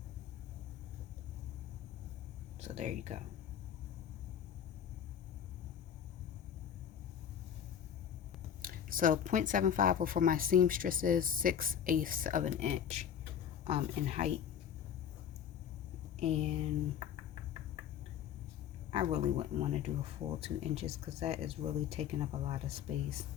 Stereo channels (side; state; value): right; quieter; 8.9 dB